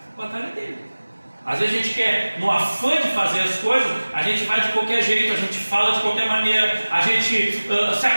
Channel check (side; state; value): both; inverted; correlation -1.00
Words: a batalha dele. Às vezes a gente quer, no afã de fazer as coisas, a gente vai de qualquer jeito, a gente fala de qualquer maneira, a gente se